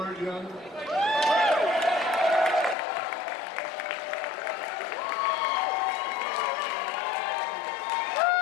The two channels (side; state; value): right; drops out; at 2.8 s